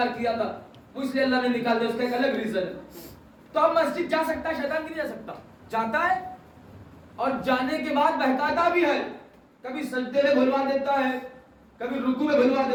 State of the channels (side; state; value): both; identical; correlation 1.00